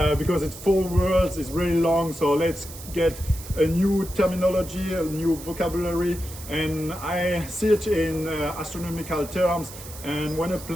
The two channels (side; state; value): right; noise; hiss, 14 dB below the sound